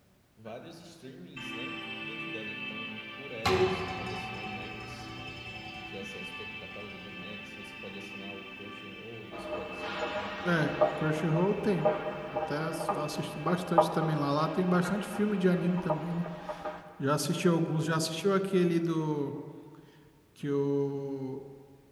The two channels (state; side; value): identical; both; correlation 1.00